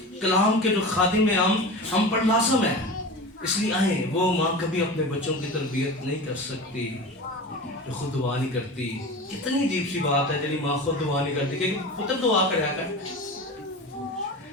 کلام کے جو خادم ہیں ہم پر لازم ہے. اس لیے آئیں, وہ ماں کبھی اپنے بچوں کی تربیت نہیں کر سکتی جو خود دعا نہیں کرتی. کتنی عجیب سی بات ہے جب ماں خود دعا نہیں کرتی کہ پتر دعا کریا کر.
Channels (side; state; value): both; normal; correlation 0.31